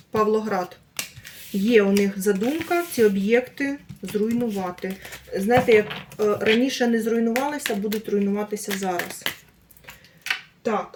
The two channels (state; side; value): identical; both; correlation 1.00